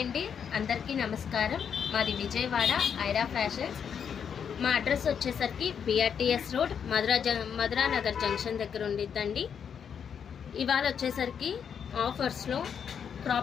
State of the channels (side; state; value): right; quieter; 7.5 dB